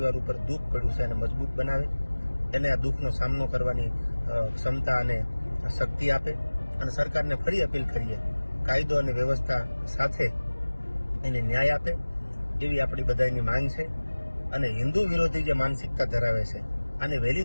ઉપર દુઃખ પડ્યું છે એને મજબૂત બનાવે, એને આ દુઃખનો સામનો કરવાની ક્ષમતા અને શક્તિ આપે. અને સરકારને ફરી અપીલ કરીએ, કાયદો અને વ્યવસ્થા સાથે એને ન્યાય આપે એવી આપણી બધાની માંગ છે. અને હિન્દુ વિરોધી જે માનસિકતા ધરાવે છે અને વહેલી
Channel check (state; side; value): inverted; both; correlation -1.00